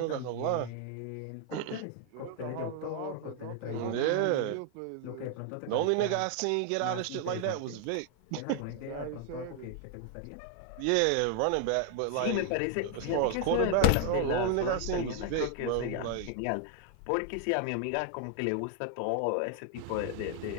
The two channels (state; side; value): different; both; correlation 0.00